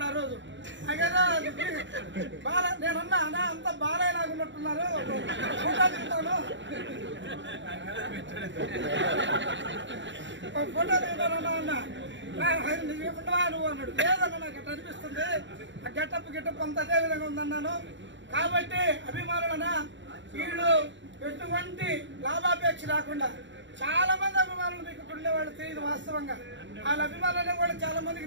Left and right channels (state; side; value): late; left; 0.54 ms